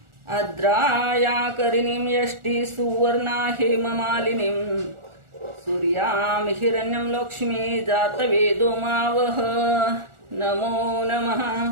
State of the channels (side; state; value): left; late; 1.4 ms